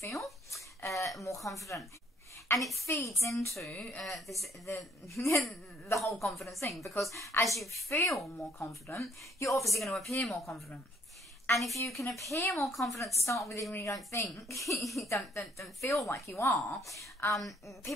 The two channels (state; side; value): normal; both; correlation 0.66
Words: more confident. And it feeds into the whole confidence thing, because as you feel more confident, you're obviously going to appear more confident. And if you can appear more confident to start with, even when you don't think, you don't feel like you are,